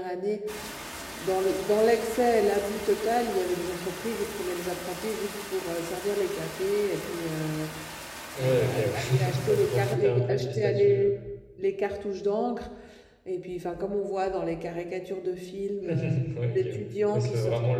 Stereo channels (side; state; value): both; identical; correlation 1.00